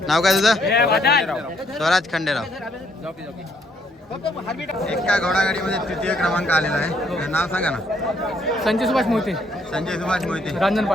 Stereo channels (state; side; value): normal; both; correlation 0.70